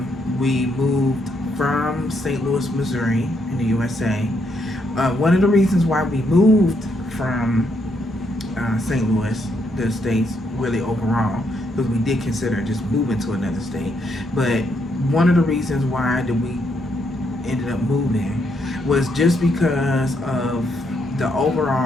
We moved from St. Louis, Missouri in the USA. One of the reasons why we moved from St. Louis, the States, really overall, because we did consider just moving to another state. But one of the reasons why that we ended up moving was just because of the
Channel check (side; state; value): both; normal; correlation 0.76